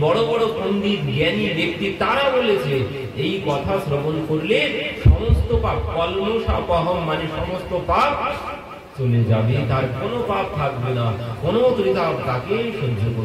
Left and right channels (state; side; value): identical; both; correlation 1.00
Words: বড় বড় পণ্ডিত জ্ঞানী ব্যক্তি তারা বলেছে এই কথা শ্রবণ করলে সমস্ত পাপ, কল্মষাপহম মানে সমস্ত পাপ চলে যাবে, তার কোনো পাপ থাকবে না, কোনো ত্রিতাপ তাকে সহ্য